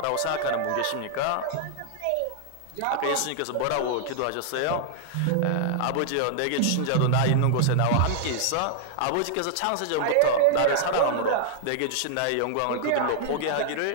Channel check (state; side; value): different; both; correlation -0.01